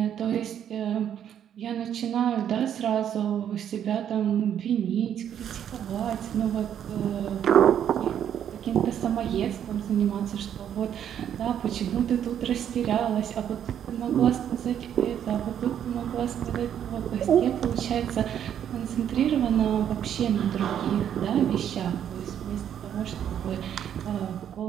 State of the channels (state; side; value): quieter; left; 9.5 dB